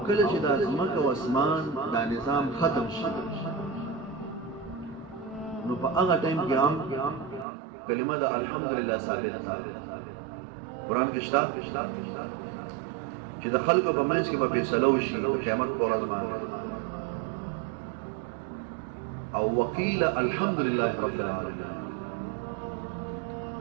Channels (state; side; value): drops out; left; at 7.5 s